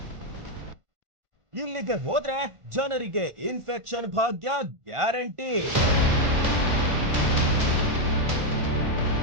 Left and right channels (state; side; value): late; left; 1.5 ms